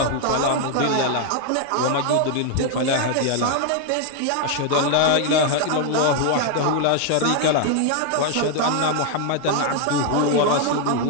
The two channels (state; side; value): different; both; correlation 0.00